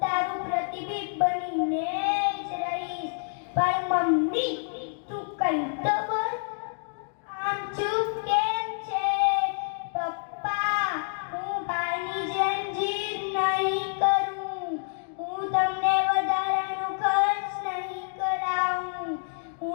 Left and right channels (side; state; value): right; silent; digital silence